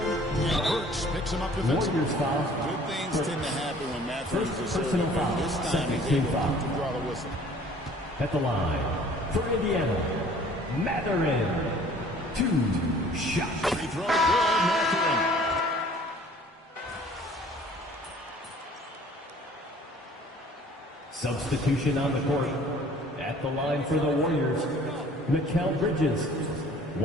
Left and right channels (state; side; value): normal; both; correlation 0.52